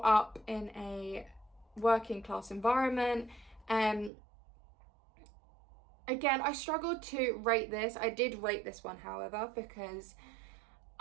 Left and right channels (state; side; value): drops out; left; at 4.1 s